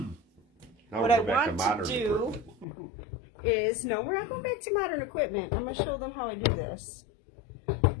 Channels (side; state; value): right; drops out; at 2.7 s